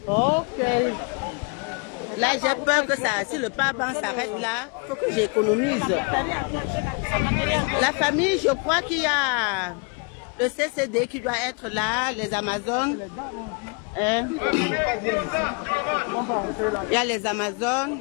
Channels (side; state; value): right; quieter; 34.4 dB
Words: Ok. Là, j'ai peur que ça, si le powerbank s'arrête là, il faut que j'économise. La famille, je crois qu'il y a le CCD qui doit être là, les Amazones. Hein? Il y a les Amazones.